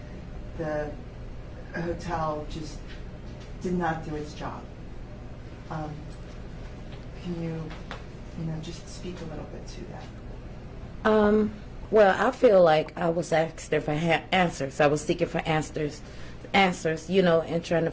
the hotel just did not do its job. Can you just speak a little bit to that? Well, I feel like I was asked for answers. I was seeking for answers, and trying to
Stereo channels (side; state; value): both; identical; correlation 1.00